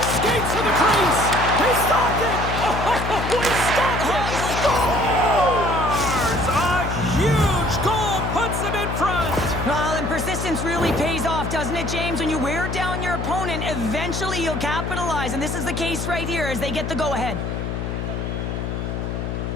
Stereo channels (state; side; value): noise; left; hum, 3 dB below the sound